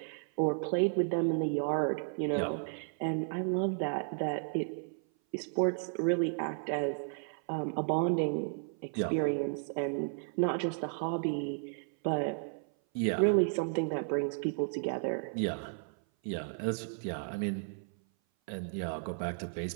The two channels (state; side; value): silent; left; 55 dB below the other